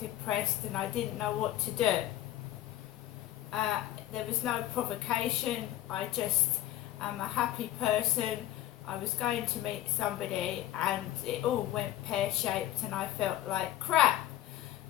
and I didn't know what to do. There was no provocation. I just am a happy person. I was going to meet somebody and it all went pear-shaped and I felt like crap.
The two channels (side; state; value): right; quieter; 13.8 dB